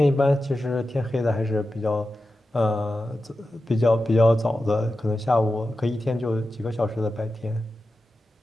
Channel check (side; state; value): both; normal; correlation 0.92